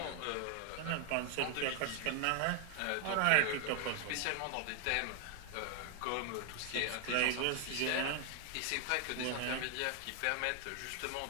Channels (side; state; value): both; different; correlation 0.00